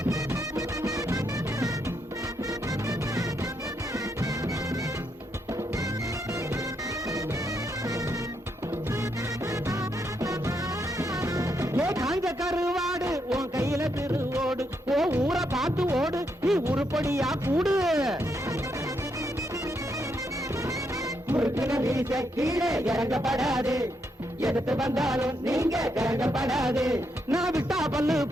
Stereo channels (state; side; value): normal; both; correlation 0.79